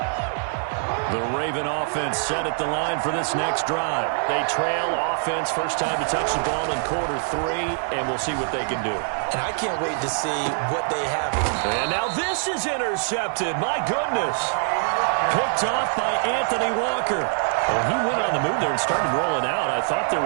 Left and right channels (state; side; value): silent; left; 63 dB below the other